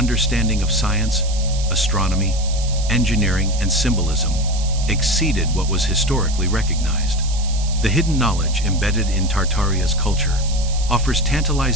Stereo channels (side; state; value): right; noise; hiss, 12 dB below the sound